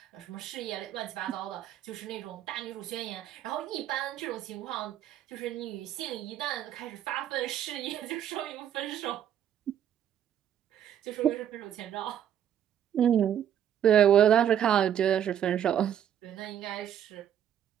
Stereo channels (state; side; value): quieter; left; 9.9 dB